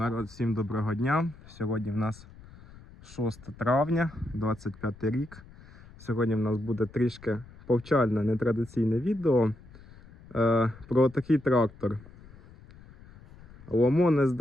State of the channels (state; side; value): noise; left; rumble, 21 dB below the sound